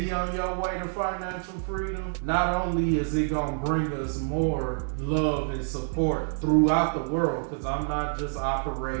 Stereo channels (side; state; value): left; silent; digital silence